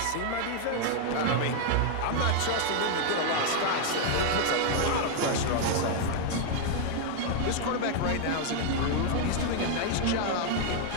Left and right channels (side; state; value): both; different; correlation 0.00